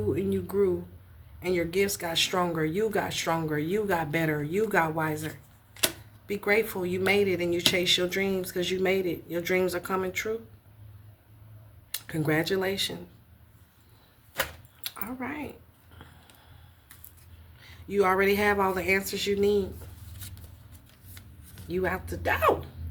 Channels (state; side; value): identical; both; correlation 1.00